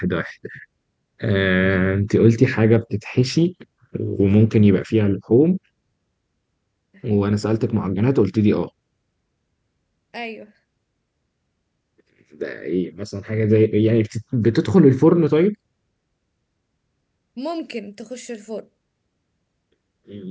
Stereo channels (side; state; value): both; identical; correlation 1.00